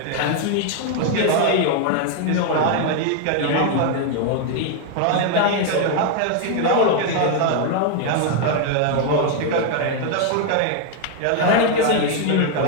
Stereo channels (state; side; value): different; both; correlation 0.01